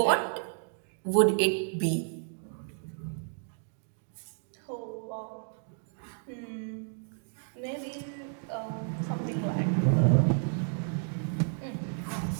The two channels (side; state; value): left; silent; 57 dB below the other